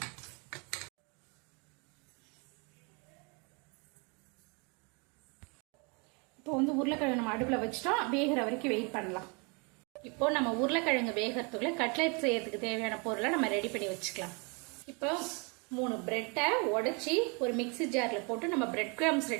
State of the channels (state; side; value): quieter; left; 32.4 dB